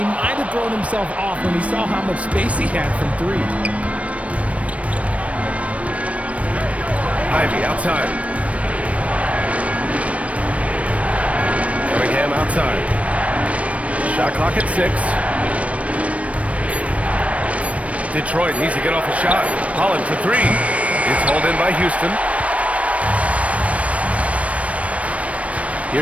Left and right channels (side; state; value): left; late; 0.065 ms